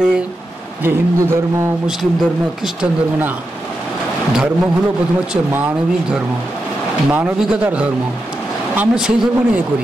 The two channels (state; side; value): normal; both; correlation 0.87